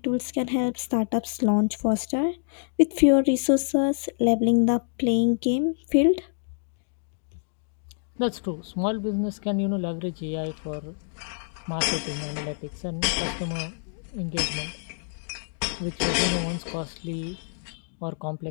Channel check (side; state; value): right; silent; digital silence